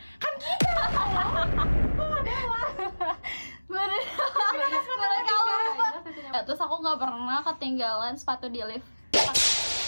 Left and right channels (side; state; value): both; inverted; correlation -1.00